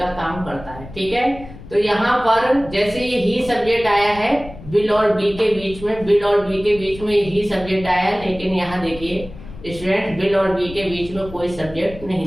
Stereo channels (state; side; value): noise; left; rumble, 16 dB below the sound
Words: काम करता है, ठीक है। तो यहाँ पर जैसे ये ही सब्जेक्ट आया है विल और बी के बीच में, विल और बी के बीच में ही सब्जेक्ट आया है, लेकिन यहाँ देखिए स्टूडेंट विल और बी के बीच में कोई सब्जेक्ट